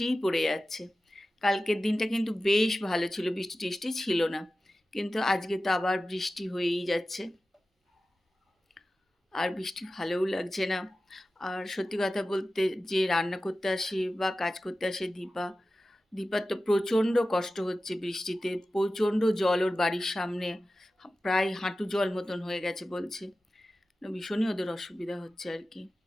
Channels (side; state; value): both; normal; correlation 0.95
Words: পড়ে যাচ্ছে। কালকের দিনটা কিন্তু বেশ ভালো ছিল, বৃষ্টি টিষ্টি ছিল না, কিন্তু আজকে তো আবার বৃষ্টি হয়েই যাচ্ছে। আর বৃষ্টি ভালোও লাগছে না। আর সত্যি কথা বলতে, যে রান্না করতে আসে বা কাজ করতে আসে দীপার তো প্রচণ্ড কষ্ট হচ্ছে বৃষ্টিতে। প্রচণ্ড জল ওর বাড়ির সামনে, প্রায় হাঁটু জল মতন হয়ে গেছে বলছে। ভীষণই ওদের অসুবিধা হচ্ছে আর কি।